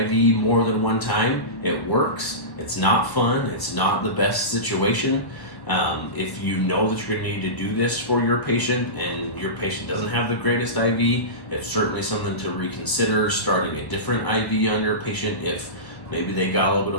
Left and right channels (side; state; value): right; late; 1.1 ms